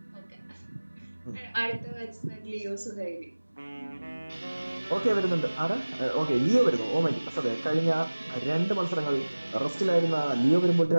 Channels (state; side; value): inverted; both; correlation -1.00